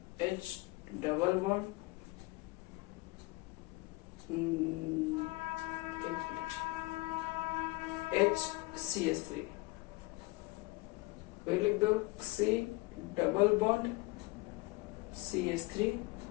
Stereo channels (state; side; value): quieter; right; 23.1 dB